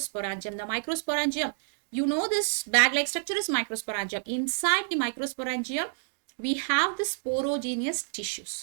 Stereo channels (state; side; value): silent; left; digital silence